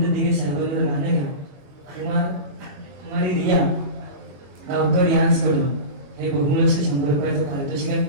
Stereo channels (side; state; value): left; late; 21 ms